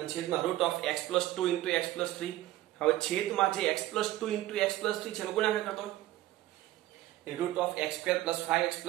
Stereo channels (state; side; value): quieter; left; 15.5 dB